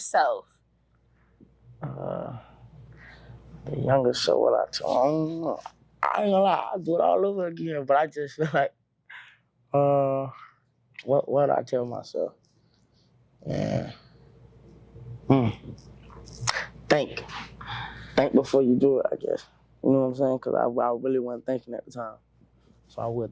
The younger self, what I tell? I don't know. I ain't gonna lie, I'll do it all over again. But I just feel like, what do I tell myself? Yeah. Think before you do it, I guess. You know what I'm saying? Because I really wasn't thinking at the time. So I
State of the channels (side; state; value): both; identical; correlation 1.00